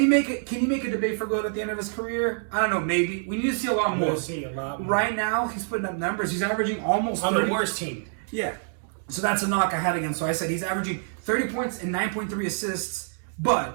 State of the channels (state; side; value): silent; left; digital silence